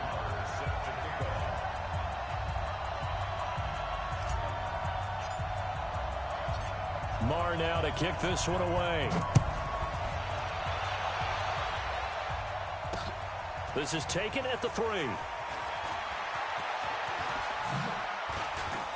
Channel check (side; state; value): both; identical; correlation 1.00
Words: Marr now to kick this one away. This is taken at the 3.